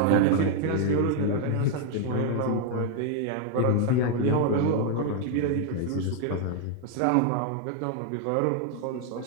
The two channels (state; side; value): different; both; correlation 0.00